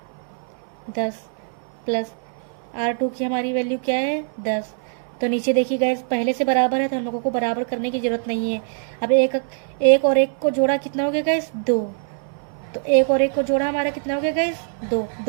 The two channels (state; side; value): silent; left; digital silence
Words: 10, प्लस R2 की हमारी वैल्यू क्या है 10। तो नीचे देखिए गाइस, पहले से बराबर है तो हम लोगों को बराबर करने की जरूरत नहीं है। अब एक और एक को जोड़ा कितना हो गया गाइस 2। तो एक और एक को जोड़ा हमारा कितना हो गया गाइस 2,